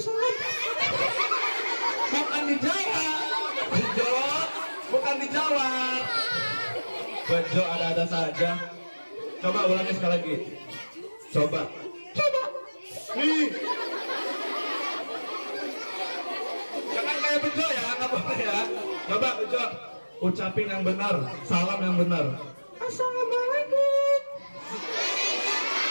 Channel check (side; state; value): both; inverted; correlation -1.00